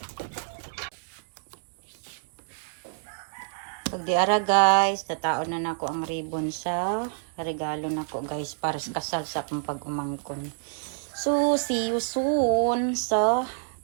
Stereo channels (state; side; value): silent; left; digital silence